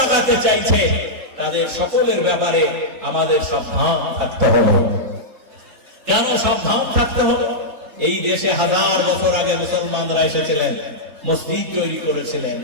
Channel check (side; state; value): left; late; 3.8 ms